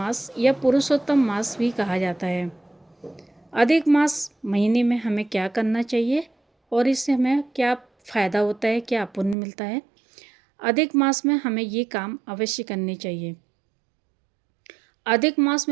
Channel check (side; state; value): left; drops out; at 9.3 s